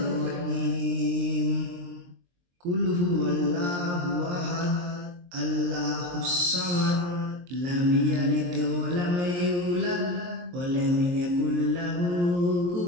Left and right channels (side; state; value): left; late; 23 ms